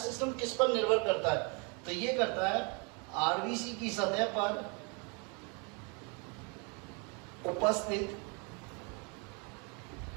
सिस्टम किस पर निर्भर करता है? तो ये करता है आरबीसी की सतह पर उपस्थित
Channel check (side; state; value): left; quieter; 33.4 dB